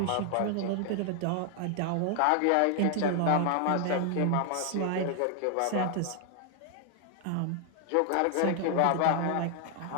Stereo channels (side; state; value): both; different; correlation 0.00